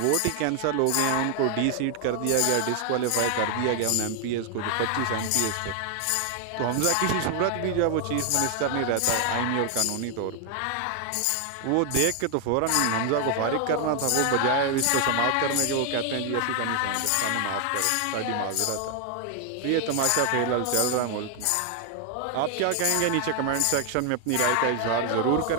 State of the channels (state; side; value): different; both; correlation 0.00